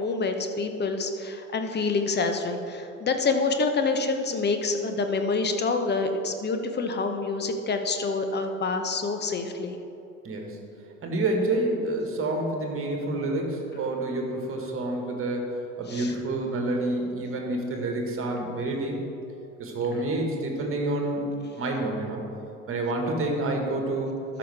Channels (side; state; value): both; normal; correlation 0.24